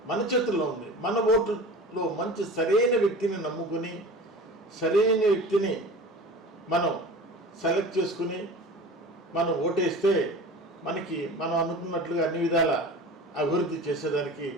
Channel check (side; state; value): both; normal; correlation 0.37